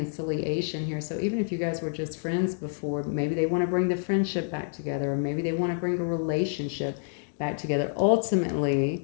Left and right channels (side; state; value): right; silent; digital silence